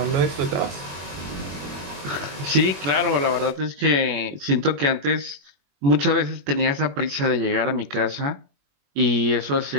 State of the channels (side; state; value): left; late; 21 ms